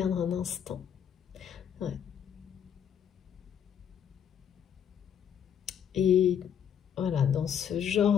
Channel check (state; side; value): quieter; right; 8.6 dB